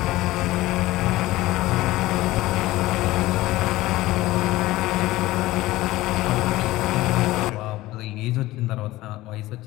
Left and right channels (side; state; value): right; quieter; 17.7 dB